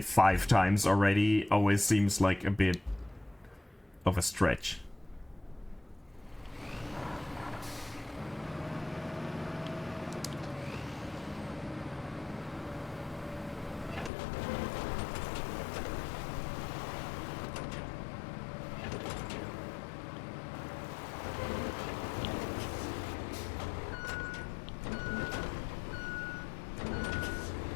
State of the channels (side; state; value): right; drops out; at 14.1 s